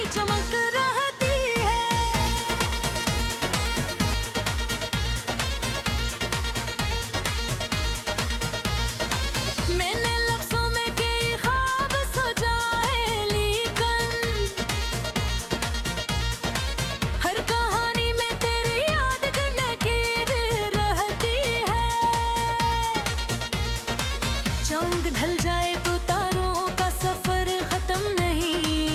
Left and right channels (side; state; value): both; identical; correlation 1.00